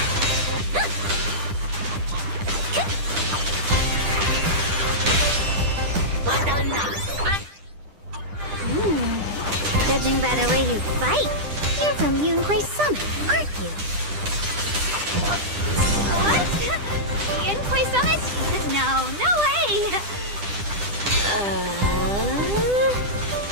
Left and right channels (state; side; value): late; left; 10 ms